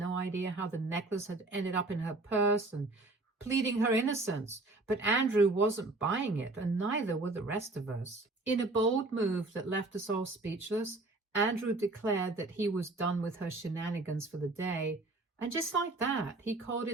idea how the necklace had ended up in her purse and pleading her innocence. But Andrew wasn't buying it, and neither were the rest of us. In a bold move that left us all speechless, Andrew declared that he was done with her shenanigans for the day. And just like that, he called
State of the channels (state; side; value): quieter; left; 3.0 dB